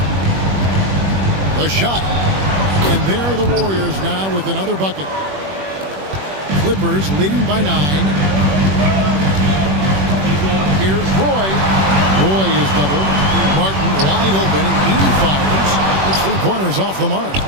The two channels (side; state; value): left; late; 21 ms